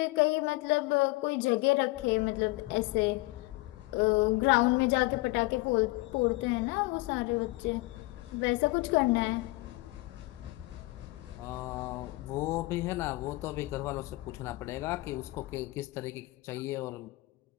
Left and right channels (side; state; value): right; quieter; 21.7 dB